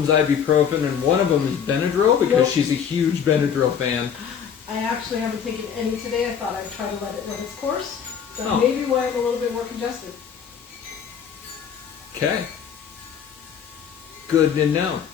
ibuprofen and one of them is Benadryl because she's a huge Benadryl fan. I actually haven't taken any today. I thought I'd try to let it run its course. That Oh. may be why I'm a little bit more congested. Okay. Good to know.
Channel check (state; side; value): quieter; right; 7.8 dB